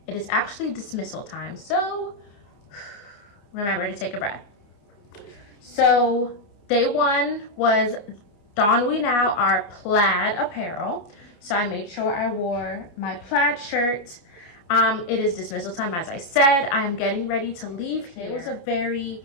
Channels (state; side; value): late; right; 29 ms